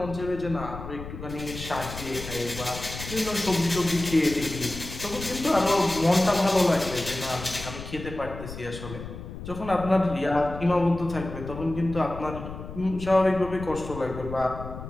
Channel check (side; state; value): left; noise; rumble, 10 dB below the sound